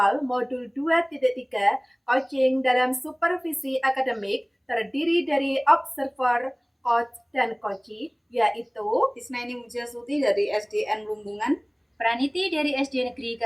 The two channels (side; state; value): both; identical; correlation 1.00